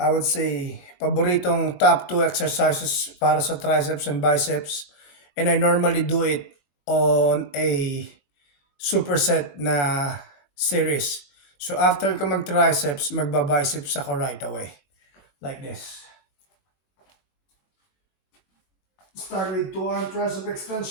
would say, paboritong top 2 exercises para sa triceps and biceps. And I normally do it on a superset na series. So after ko mag-triceps, magba-biceps ako right away. Like this. Start with 2-arm tricep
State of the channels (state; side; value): late; right; 21 ms